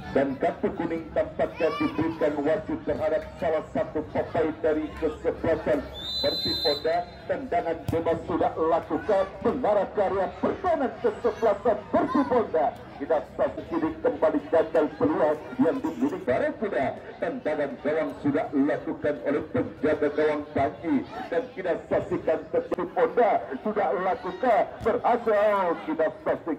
dan kartu kuning tampaknya diberikan wasit terhadap salah satu pemain dari kesebelasan Persipura. Tendangan bebas sudah lakukan mengarah karya pertahanan kesebelasan Persipura. Kita saksikan kembali gagal peluang yang dimiliki Barakuda. Tendangan gawang sudah dilakukan oleh penjaga gawang Panji dan kita saksikan Persipura sudah lakukan berhasil. Kita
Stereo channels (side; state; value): both; identical; correlation 1.00